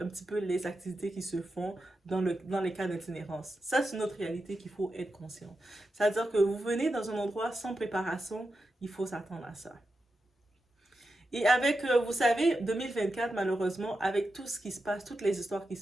un petit peu les activités qui se font dans les cas d'itinérance. Ça, c'est notre réalité qu'il faut être conscient. C'est-à-dire que vous venez dans un endroit sans préparation, il faut s'attendre à ça. Et avec, vous savez, 2024, malheureusement, avec tout ce qui se passe, toutes les histoires qui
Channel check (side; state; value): both; normal; correlation 0.89